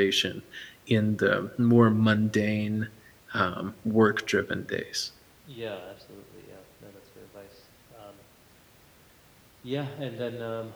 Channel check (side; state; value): both; identical; correlation 1.00